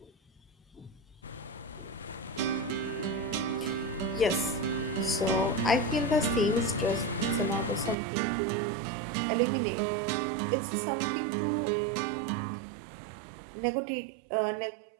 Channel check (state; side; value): drops out; left; at 8.0 s